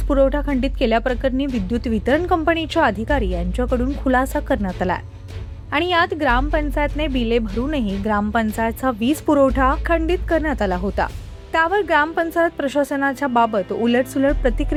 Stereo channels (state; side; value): identical; both; correlation 1.00